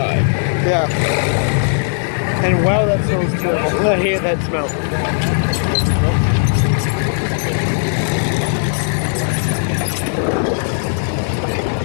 Yeah. And wow, that smells terrible. I hate that smell.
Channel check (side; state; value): right; silent; digital silence